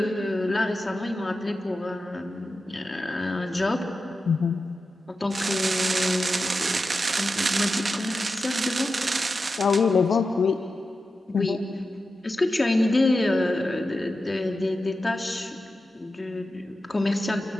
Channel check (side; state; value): both; normal; correlation 0.91